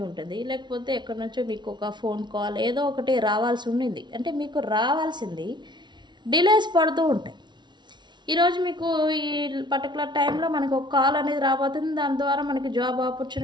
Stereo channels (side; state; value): left; late; 0.21 ms